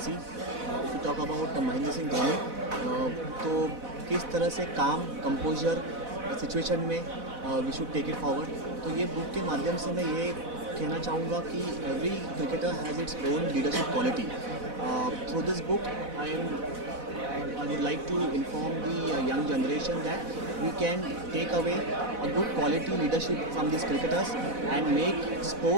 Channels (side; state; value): left; late; 4.0 ms